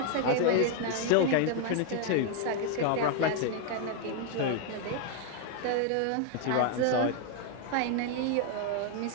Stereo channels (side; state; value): both; different; correlation 0.00